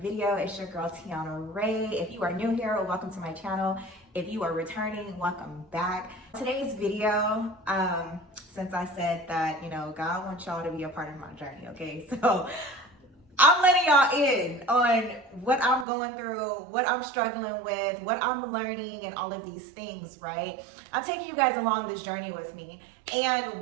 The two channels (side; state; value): left; drops out; at 15.9 s